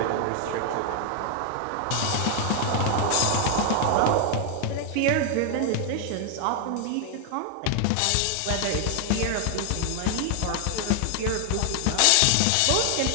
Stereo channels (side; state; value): both; different; correlation 0.00